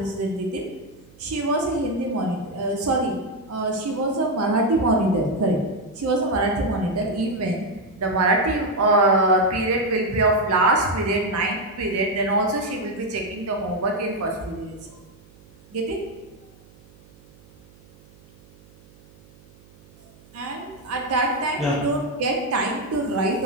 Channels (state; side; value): noise; right; hum, 26 dB below the sound